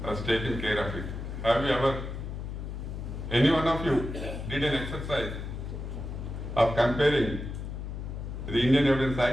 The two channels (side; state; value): left; noise; hum, 6 dB below the sound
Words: has taken care of it. Have you ever, any one of you did an exercise of comparing the Indian Evidence